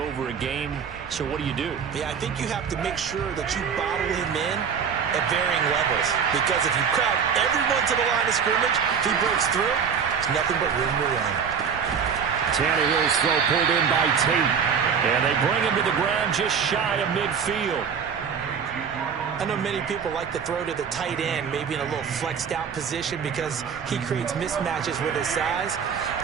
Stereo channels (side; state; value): left; quieter; 6.8 dB